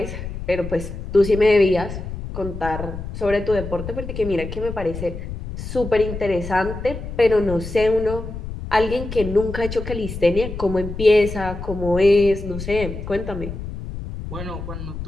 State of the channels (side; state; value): left; noise; rumble, 8 dB below the sound